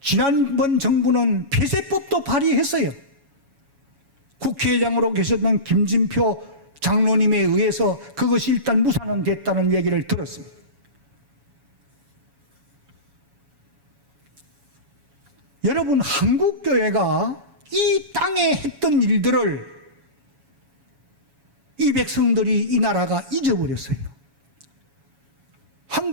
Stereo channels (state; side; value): late; left; 7.2 ms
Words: 지난번 정부는 폐쇄법도 발의했어요. 국회의장으로 계셨던 김진표 장로님에 의해서 그것이 일단 무산은 됐다는 얘기를 들었습니다. 여러분, 한국교회가 이 땅에 했던 일들을 이 백성들이, 이 나라가 잊어버렸어요.